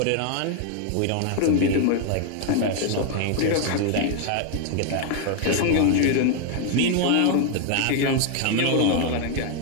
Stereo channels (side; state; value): both; different; correlation 0.00